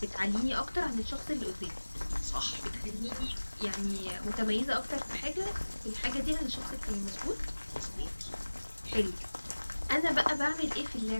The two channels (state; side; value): inverted; both; correlation -1.00